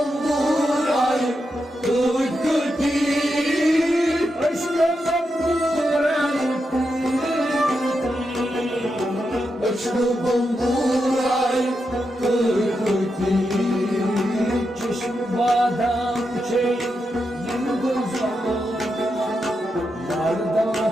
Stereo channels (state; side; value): normal; both; correlation 0.86